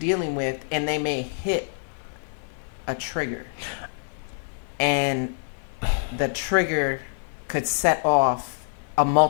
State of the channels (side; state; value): right; silent; 58 dB below the other